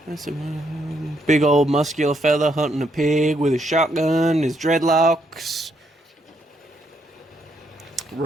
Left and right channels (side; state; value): both; normal; correlation 0.75